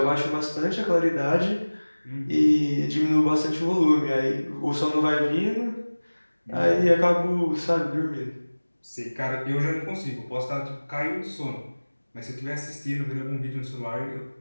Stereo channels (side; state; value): both; inverted; correlation -1.00